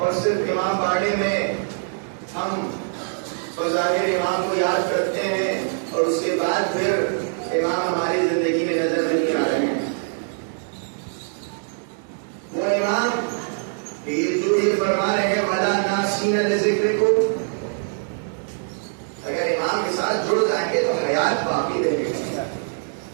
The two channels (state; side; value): silent; left; digital silence